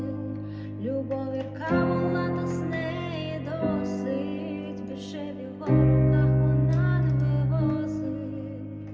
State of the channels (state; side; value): identical; both; correlation 1.00